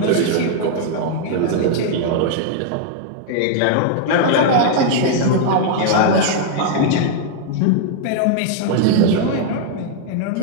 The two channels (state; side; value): different; both; correlation 0.00